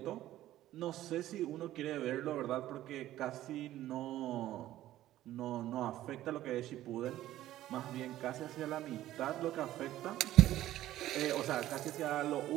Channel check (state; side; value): quieter; left; 14.1 dB